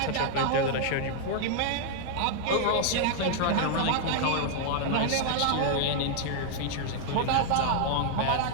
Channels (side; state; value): both; different; correlation 0.00